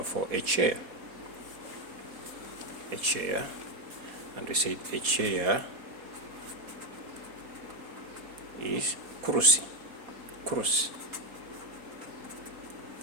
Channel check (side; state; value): left; late; 4.2 ms